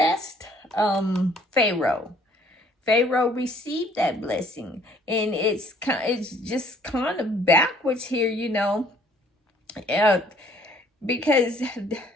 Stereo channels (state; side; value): normal; both; correlation 0.60